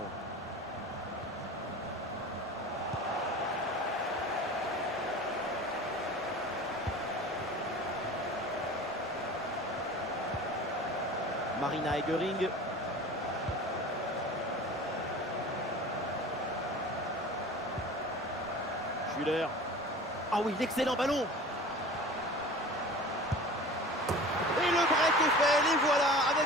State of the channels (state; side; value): normal; both; correlation 0.38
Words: Marina Egering. Schüller. Ah oui, l'excellent ballon. Et le break est fait, les voilà, avec